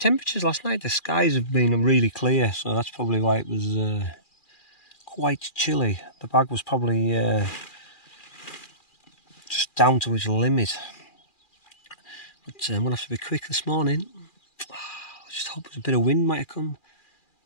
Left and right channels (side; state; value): right; late; 2.4 ms